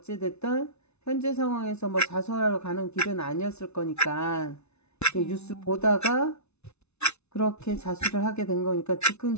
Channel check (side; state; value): right; late; 0.81 ms